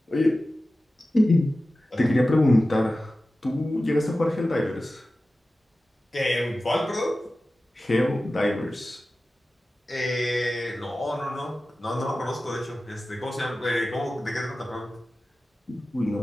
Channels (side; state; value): both; normal; correlation 0.95